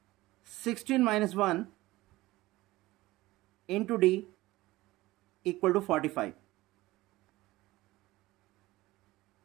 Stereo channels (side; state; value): left; quieter; 18.4 dB